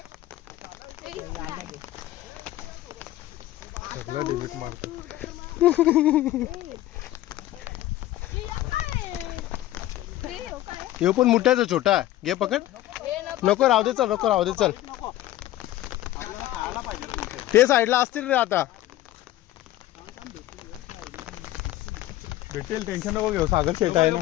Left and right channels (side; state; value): right; quieter; 14.9 dB